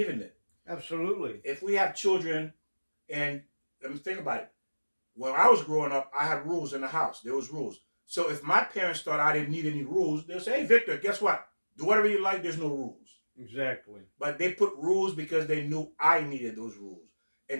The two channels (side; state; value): both; inverted; correlation -1.00